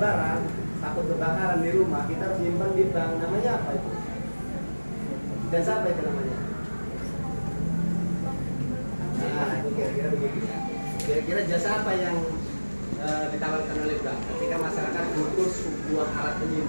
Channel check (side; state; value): both; inverted; correlation -1.00